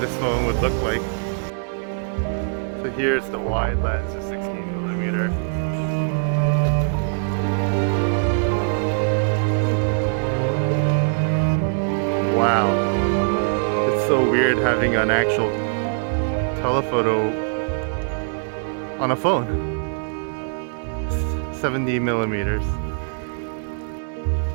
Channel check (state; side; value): silent; left; 59 dB below the other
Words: this phone would look like. So here's the wide lens of 16mm. Wow. It's so weird having an actual telephoto on a phone. 70mm.